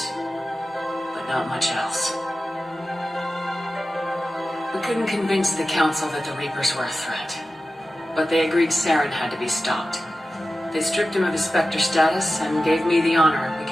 but not much else. We couldn't convince the Council that the Reapers were a threat, but they agreed Saren had to be stopped. They stripped him of his Spectre status and gave me the honor of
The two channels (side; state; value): both; normal; correlation 0.94